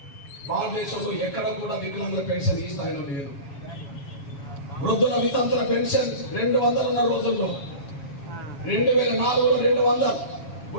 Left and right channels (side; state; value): right; late; 7.2 ms